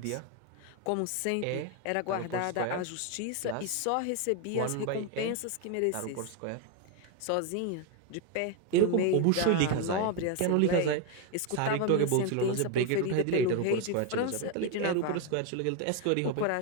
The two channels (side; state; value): both; different; correlation 0.01